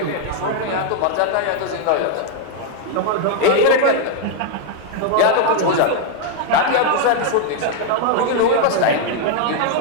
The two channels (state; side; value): different; both; correlation 0.00